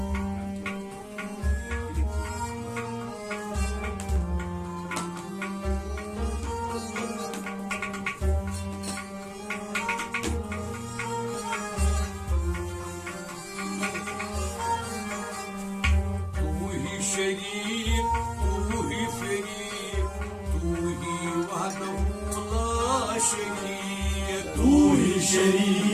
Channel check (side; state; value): both; identical; correlation 1.00